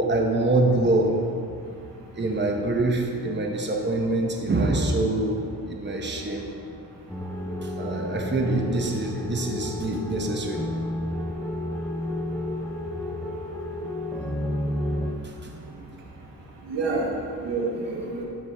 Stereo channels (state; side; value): normal; both; correlation 0.47